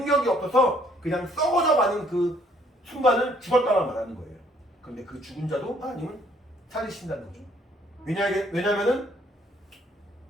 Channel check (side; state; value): both; normal; correlation 0.64